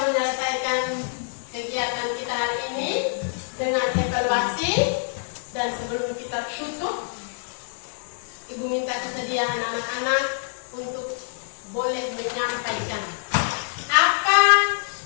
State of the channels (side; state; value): right; silent; digital silence